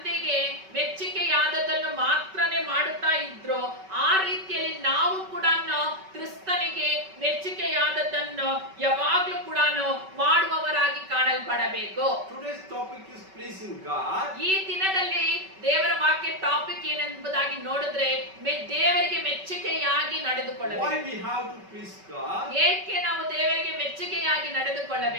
ಮೆಚ್ಚುಗೆಯಾದದನ್ನು ಮಾತ್ರನೇ ಮಾಡುತ್ತಾ ಇದ್ರು, ಆ ರೀತಿಯಲ್ಲಿ ನಾವು ಕೂಡ ಕ್ರಿಸ್ತನಿಗೆ ಮೆಚ್ಚುಗೆಯಾದದನ್ನು ಯಾವಾಗಲೂ ಕೂಡ ಮಾಡುವವರಾಗಿ ಕಾಣಲ್ಪಡಬೇಕು. Today's topic is pleasing God. ಈ ದಿನದಲ್ಲಿ ದೇವರ ವಾಕ್ಯ ಟಾಪಿಕ್ ಏನೆಂಬುದಾಗಿ ನೋಡಿದ್ರೆ ದೇವರಿಗೆ ಮೆಚ್ಚುಗೆಯಾಗಿ ನಡೆದುಕೊಳ್ಳಬೇಕು. Why we have to please God? ಏಕೆ ನಾವು ದೇವರಿಗೆ ಮೆಚ್ಚುಗೆಯಾಗಿ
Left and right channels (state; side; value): late; left; 5.3 ms